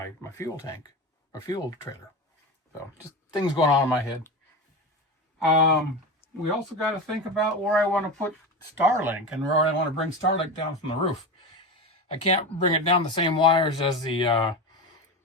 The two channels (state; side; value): normal; both; correlation 0.22